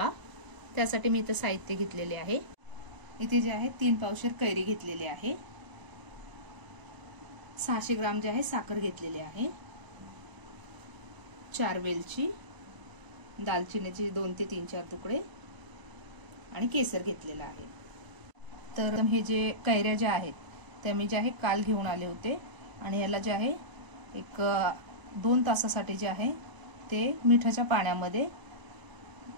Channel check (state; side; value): late; left; 1.0 ms